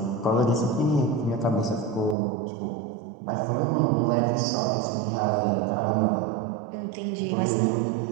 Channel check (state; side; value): drops out; left; at 2.1 s